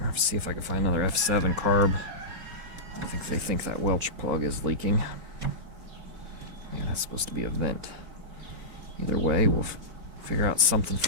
have to see if I can find another F7 carb. I think they think that Welch plug is leaking. Yeah, that's supposed to be a vent. Either way, we'll figure out something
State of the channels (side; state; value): left; late; 4.2 ms